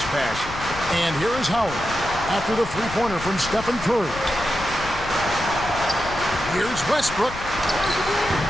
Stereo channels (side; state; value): left; noise; rumble, 12 dB below the sound